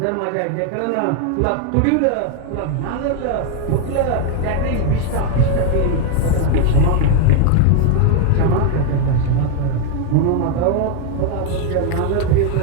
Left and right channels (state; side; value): different; both; correlation 0.00